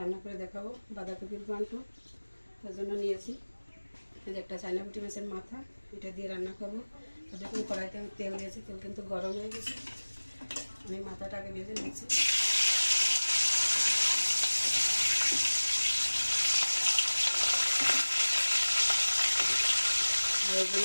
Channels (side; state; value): both; inverted; correlation -1.00